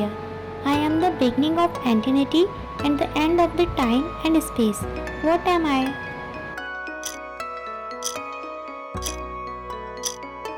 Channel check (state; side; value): identical; both; correlation 1.00